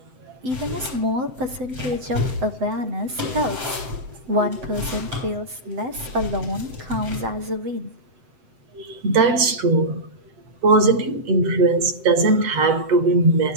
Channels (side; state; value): left; late; 7.8 ms